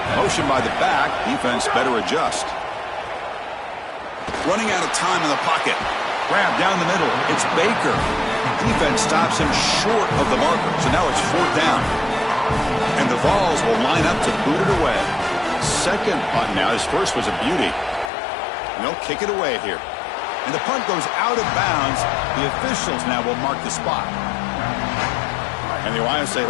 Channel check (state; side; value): drops out; right; at 18.1 s